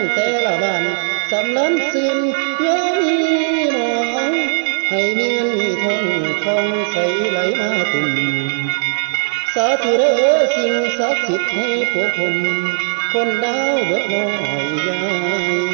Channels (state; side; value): silent; left; digital silence